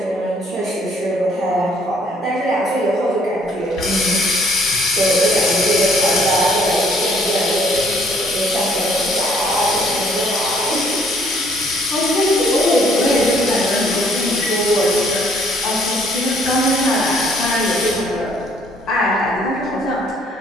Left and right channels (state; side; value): normal; both; correlation 0.63